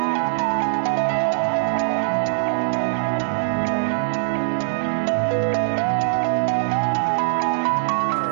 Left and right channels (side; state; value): left; silent; digital silence